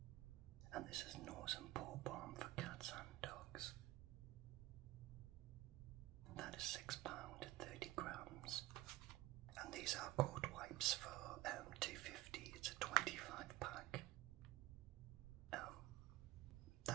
And this is nose and paw balm for cats and dogs. That is £6, 30 grams. And these are coat wipes for £2.50. It's a 25 pack.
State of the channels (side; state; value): left; quieter; 17.0 dB